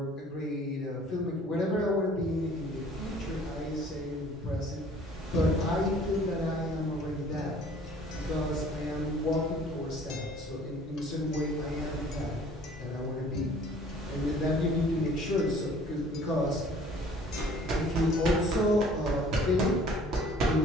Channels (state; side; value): normal; both; correlation 0.53